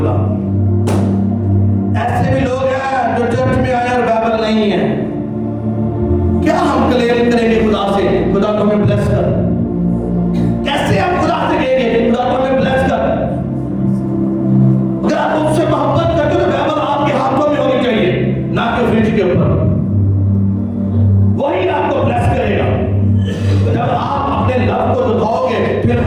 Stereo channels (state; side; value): identical; both; correlation 1.00